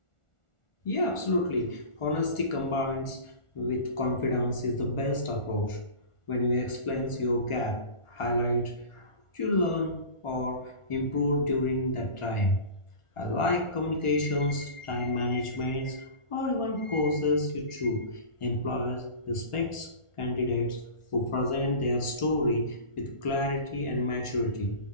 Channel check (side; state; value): right; late; 1.4 ms